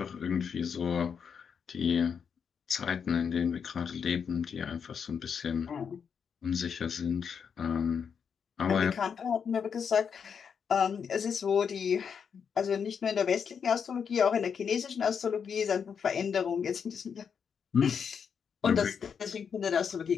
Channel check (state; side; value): quieter; right; 6.8 dB